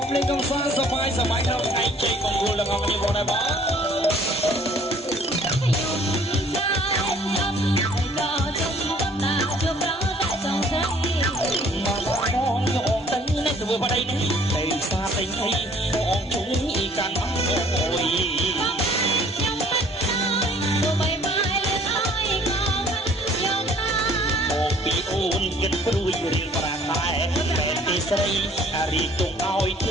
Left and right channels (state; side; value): normal; both; correlation 0.56